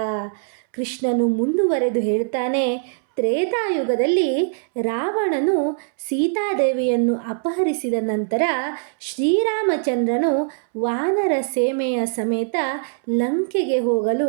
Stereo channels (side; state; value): left; silent; 64 dB below the other